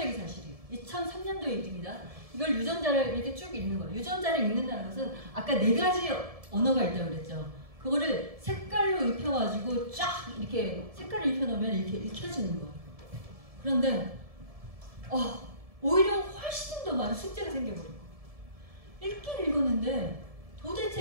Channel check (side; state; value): left; late; 1.7 ms